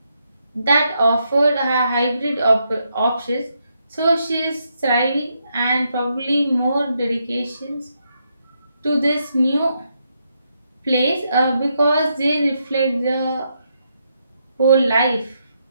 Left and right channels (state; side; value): inverted; both; correlation -0.80